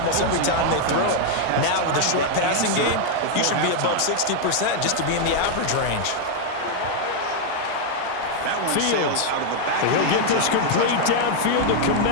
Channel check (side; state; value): both; different; correlation 0.00